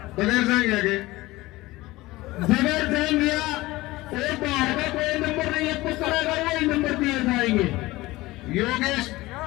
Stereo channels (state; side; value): quieter; right; 19.2 dB